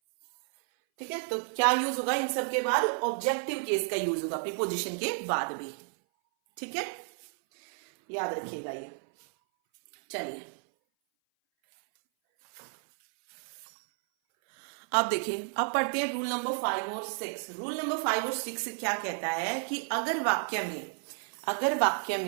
ठीक है, तो क्या यूज होगा इन सब के बाद, ऑब्जेक्टिव केस का यूज होगा, प्रीपोजिशन के बाद भी। ठीक है, याद रखिएगा ये। चलिए अब देखिए, अब पढ़ते हैं रूल नंबर 5 और 6। रूल नंबर 5 और 6 क्या कहता है कि अगर वाक्य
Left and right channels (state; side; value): silent; left; 57 dB below the other